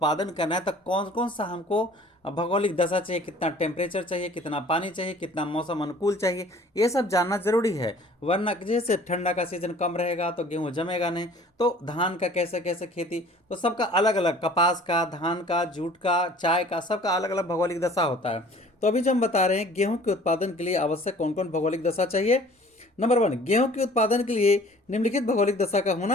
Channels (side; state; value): both; normal; correlation 0.50